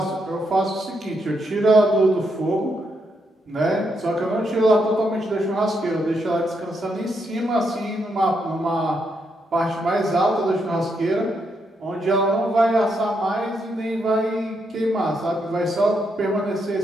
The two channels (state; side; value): normal; both; correlation 0.79